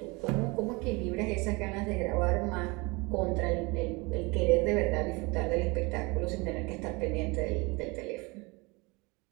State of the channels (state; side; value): quieter; left; 26.3 dB